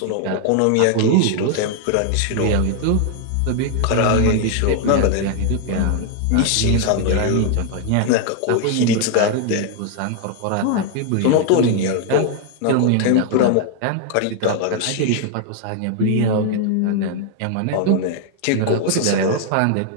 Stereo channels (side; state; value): both; different; correlation 0.00